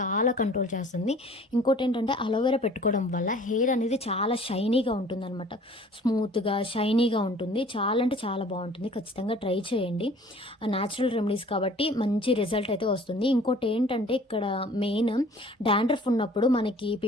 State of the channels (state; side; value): normal; both; correlation 0.51